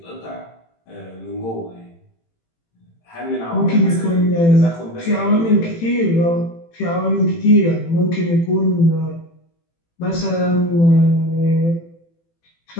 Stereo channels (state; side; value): late; right; 18 ms